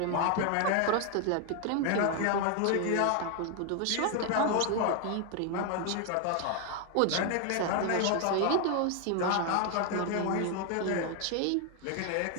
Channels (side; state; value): both; different; correlation 0.01